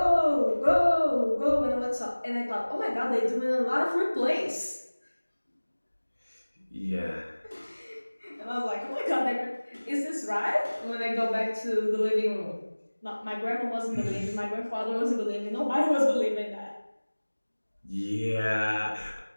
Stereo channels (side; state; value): both; inverted; correlation -1.00